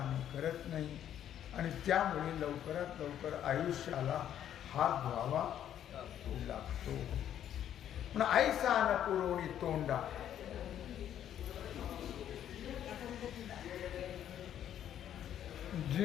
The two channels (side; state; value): right; quieter; 10.4 dB